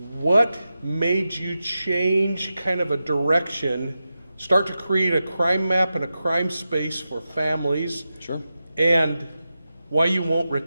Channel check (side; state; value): both; inverted; correlation -0.91